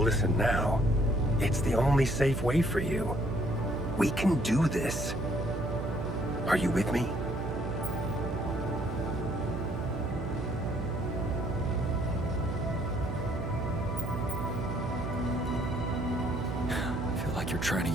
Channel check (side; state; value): right; noise; hum, 4 dB below the sound